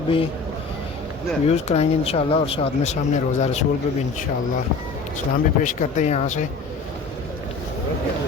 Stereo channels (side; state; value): right; quieter; 4.3 dB